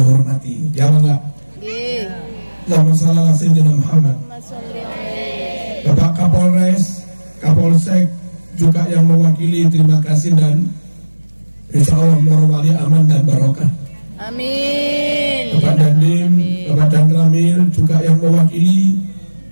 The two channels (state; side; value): inverted; both; correlation -1.00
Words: ya enggak? Nggih. Allahumma shalli ala sayyidina Muhammad. Allahumma sholli alaihi. Bapak Kapolres, Kapolsek juga yang mewakili, terima kasih, dan insya Allah Morowali aman dan barokah. Amin. Bapak Dandim, Bapak Danramil juga yang mewakili,